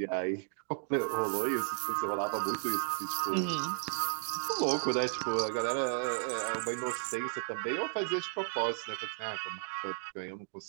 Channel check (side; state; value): left; silent; digital silence